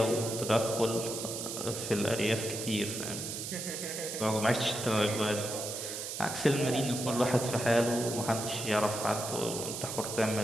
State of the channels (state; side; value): noise; right; hiss, 6 dB below the sound